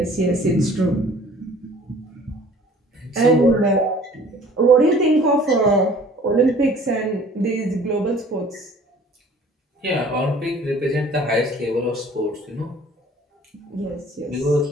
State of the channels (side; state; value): both; normal; correlation 0.51